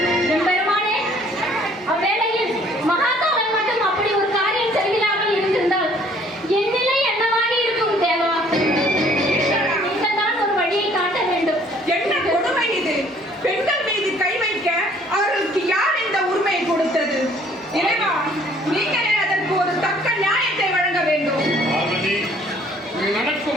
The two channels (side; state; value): both; normal; correlation 0.59